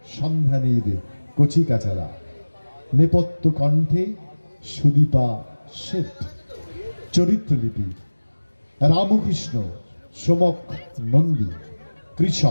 সন্ধানীর কচিকাচারা, নেপথ্য কণ্ঠে সুদীপা শেঠ। চরিত্রলিপি রামকৃষ্ণ সোমক নন্দী,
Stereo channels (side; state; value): both; inverted; correlation -1.00